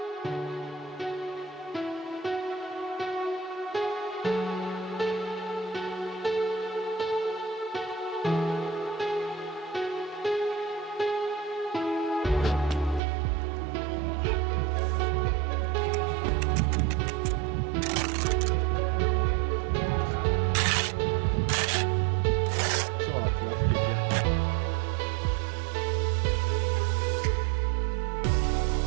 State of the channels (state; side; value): drops out; left; at 13.0 s